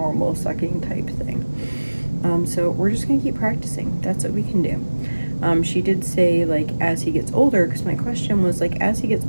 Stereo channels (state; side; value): inverted; both; correlation -1.00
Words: sucking type thing. So we're just gonna keep practicing. That's what we can do. She did say like as he gets older, because my question was like, as he gets